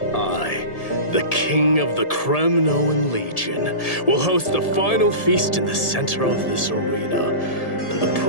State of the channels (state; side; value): late; right; 1.7 ms